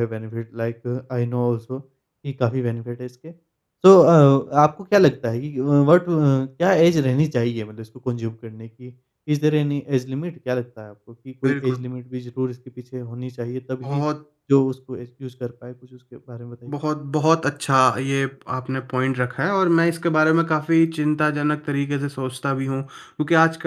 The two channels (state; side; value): identical; both; correlation 1.00